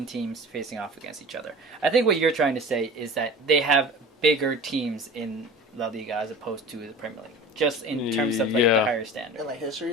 teams facing off against each other. I think what you're trying to say is that they have bigger teams in La Liga as opposed to the Premier League, just in terms of like the Yeah. higher standard. In like history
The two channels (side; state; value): both; normal; correlation 0.38